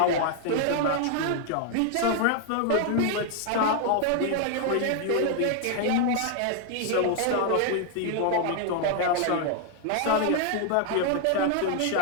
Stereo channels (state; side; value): different; both; correlation 0.00